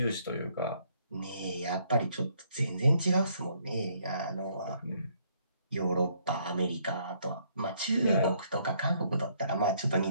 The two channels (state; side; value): inverted; both; correlation -0.68